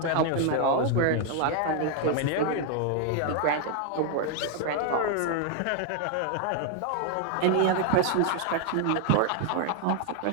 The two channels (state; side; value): different; both; correlation 0.00